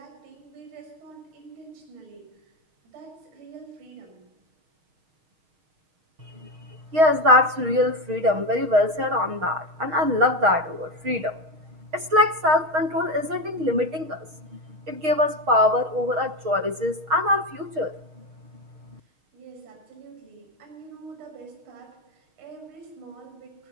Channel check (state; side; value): late; left; 6.4 ms